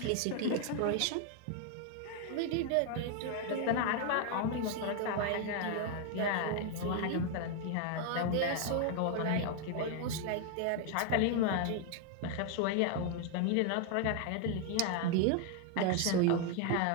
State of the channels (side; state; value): both; different; correlation 0.01